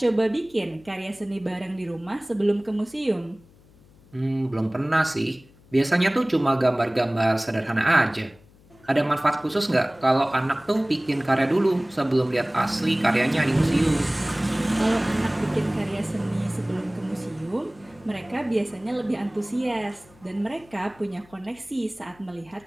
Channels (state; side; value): noise; left; hum, 27 dB below the sound